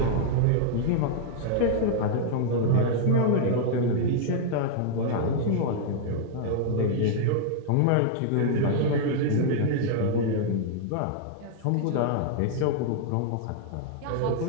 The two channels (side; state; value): both; different; correlation -0.01